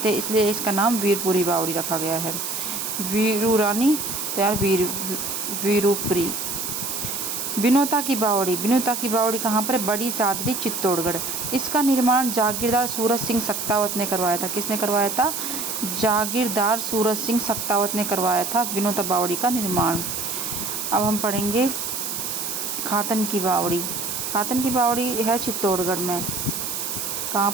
है, इसलिए इसका नाम वीरपुरी बावड़ी रखा गया है। वीरू रानी तैयार वीरूपुरी। विनोता की बावड़ी कहाँ पर है? बड़ी सादरी, चित्तौड़गढ़। इसका निर्माण जागीरदार सूरज सिंह सक्तावत ने करवाया था। किसने करवाया था? जागीरदार सूरज सिंह सक्तावत ने करवाया था विनोता बावड़ी का निर्माण। अब हम पढ़ेंगे खातन की बावड़ी है चित्तौड़गढ़ में। कहाँ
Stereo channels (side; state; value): right; noise; hiss, 3 dB below the sound